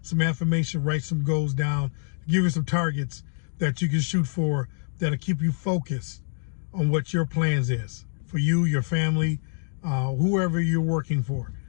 affirmation. Write some goals down. Give you some targets that you can shoot for that'll keep you focused on what your plans is for you, your family, whoever you're working for.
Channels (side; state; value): right; silent; digital silence